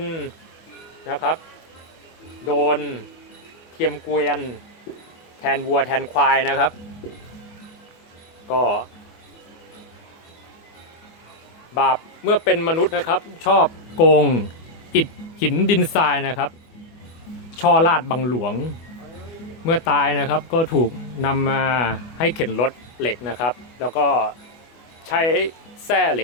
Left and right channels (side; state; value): right; late; 24 ms